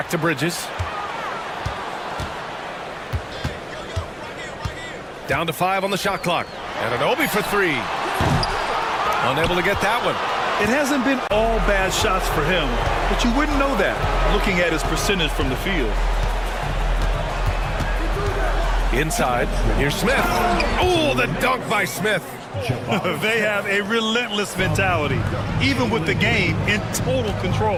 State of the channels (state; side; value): identical; both; correlation 1.00